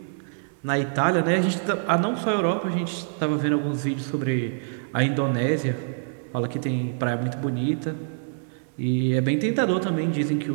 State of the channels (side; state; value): left; silent; digital silence